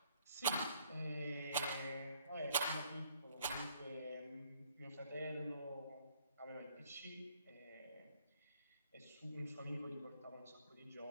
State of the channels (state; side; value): inverted; both; correlation -0.65